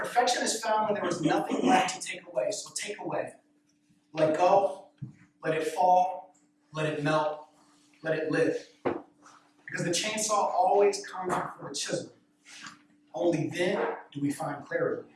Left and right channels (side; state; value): both; identical; correlation 1.00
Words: is found when there is nothing left to take away. So take away. Let go. Let it fall. Let it melt. Let it live. Because the chainsaw always comes before the chisel. Only then do we find clarity.